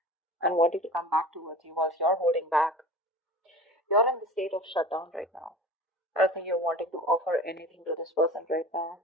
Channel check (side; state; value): both; normal; correlation 0.37